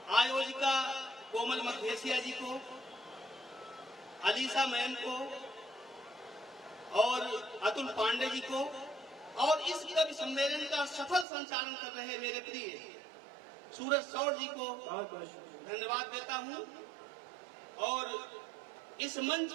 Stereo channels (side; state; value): left; drops out; at 11.2 s